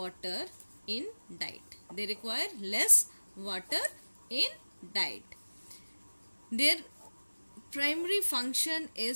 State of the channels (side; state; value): both; inverted; correlation -1.00